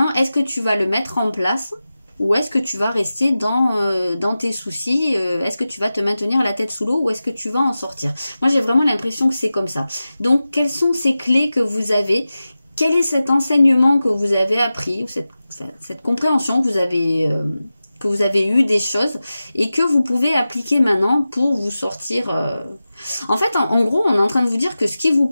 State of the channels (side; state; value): both; inverted; correlation -0.94